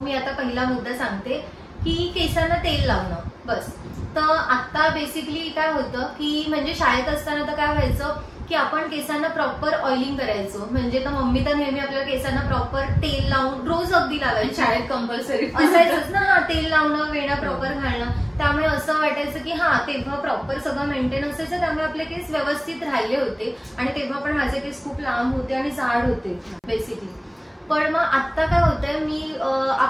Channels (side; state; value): both; identical; correlation 1.00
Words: मी आता पहिला मुद्दा सांगते की केसांना तेल लावणं. बस तर आता बेसिकली काय होतं की म्हणजे शाळेत असताना तर काय व्हायचं की आपण केसांना प्रॉपर ऑइलिंग करायचो, म्हणजे तर मम्मी तर नेहमी आपल्या केसांना प्रॉपर तेल लावून रोज अगदी लावायची. शाळेत कंपल्सरी असायचंच ना, हा तेल लावणं, वेणा प्रॉपर घालणं. त्यामुळे असं वाटायचं की हा तेव्हा प्रॉपर सगळं मेंटेन असायचं, त्यामुळे आपले केस व्यवस्थित राहिले होते आणि तेव्हा पण माझे केस खूप लांब होते आणि जाड होते बेसिकली. पण मग आता काय होतंय